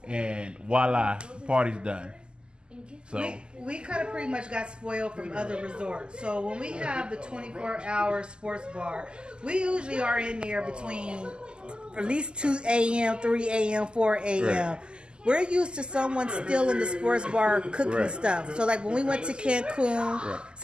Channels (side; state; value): left; late; 0.049 ms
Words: And voila, party's done. So We kind of pretty much got spoiled from other resorts. So when we have the 24-hour sports bar, we usually are in there between at least 2 a.m., 3 a.m., 4 a.m. Right. We're used to someone still in the sports bar cooking stuff. So like when we went to Cancun,